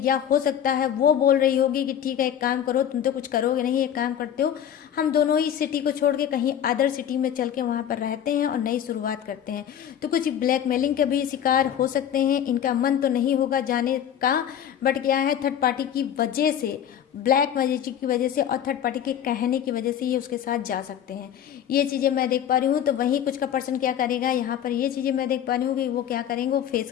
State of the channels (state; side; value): quieter; right; 9.7 dB